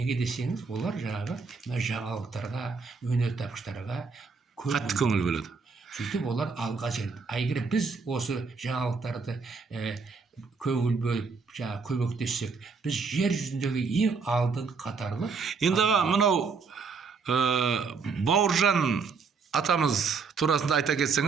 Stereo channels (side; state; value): left; quieter; 5.0 dB